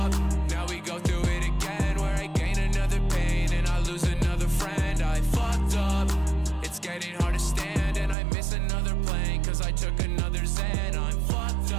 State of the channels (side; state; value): left; drops out; at 8.2 s